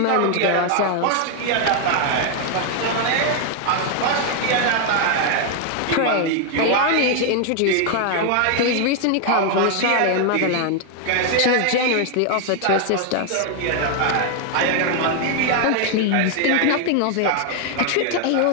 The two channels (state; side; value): different; both; correlation 0.00